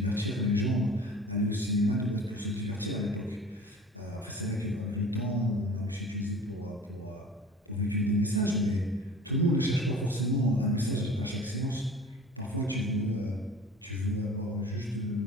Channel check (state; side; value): normal; both; correlation 0.42